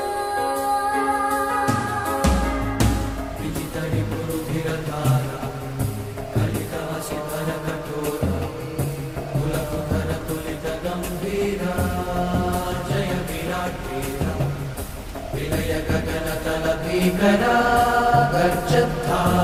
विजितरि पुरुधिरधारा कलिकासिधर कठोरा कुलकुधर तुलित गंभीरा जय विराट वीरा विलय गगन तल भीकरा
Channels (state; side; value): identical; both; correlation 1.00